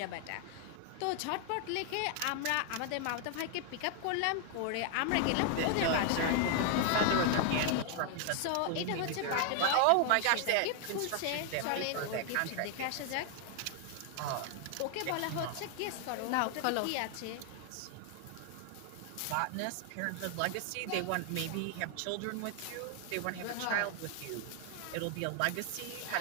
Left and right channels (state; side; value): different; both; correlation 0.00